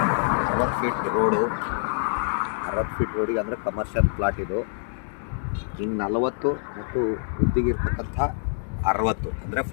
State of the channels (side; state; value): right; silent; digital silence